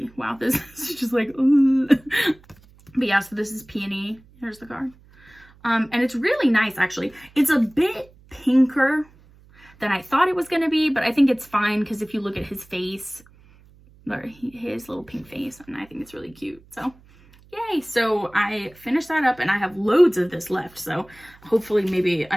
Wow, this is just like but yeah, so this is Peony. Here's the card. And it's really nice, actually. It's a bit pinker than I thought it was gonna be, but I think it's fine because if you look at his face, or his little pink face, and I think it's really cute. So yay. So I finished that up, and I have loads of this left, so hopefully maybe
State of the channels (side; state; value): right; noise; hum, 27 dB below the sound